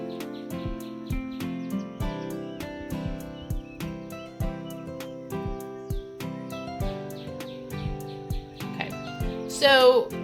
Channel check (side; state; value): both; identical; correlation 1.00